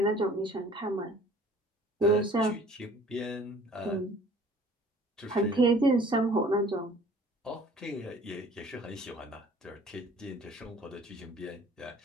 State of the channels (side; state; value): both; normal; correlation 0.51